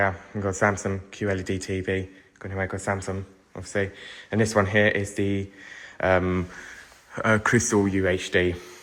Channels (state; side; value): identical; both; correlation 1.00